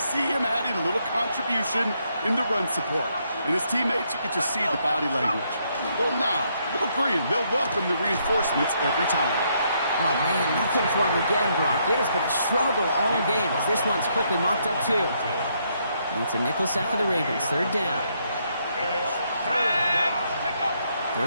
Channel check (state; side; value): inverted; both; correlation -0.74